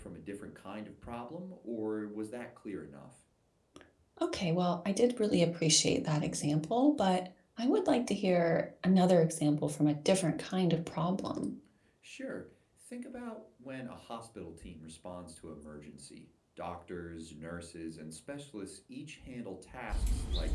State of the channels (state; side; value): identical; both; correlation 1.00